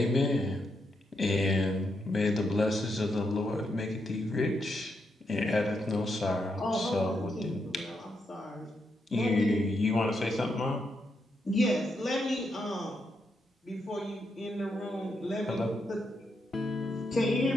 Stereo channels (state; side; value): normal; both; correlation 0.81